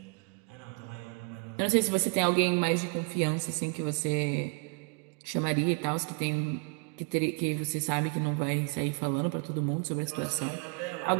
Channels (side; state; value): left; quieter; 37.2 dB